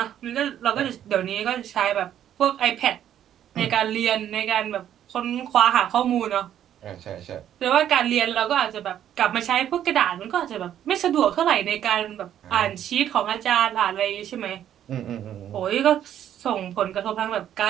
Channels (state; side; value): quieter; left; 10.6 dB